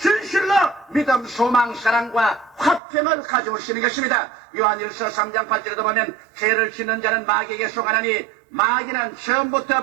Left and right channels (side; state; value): left; drops out; at 2.8 s